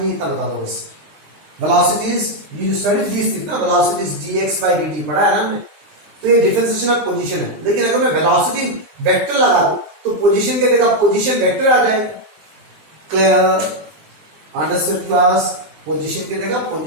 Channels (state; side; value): late; left; 20 ms